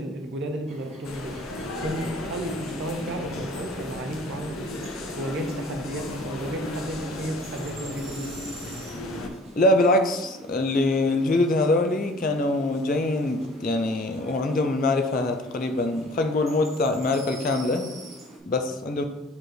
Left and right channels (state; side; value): normal; both; correlation 0.50